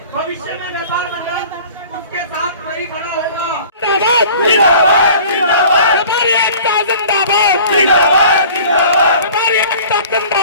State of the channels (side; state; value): both; inverted; correlation -0.46